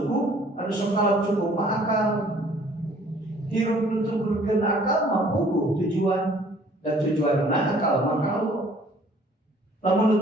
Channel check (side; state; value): both; normal; correlation 0.56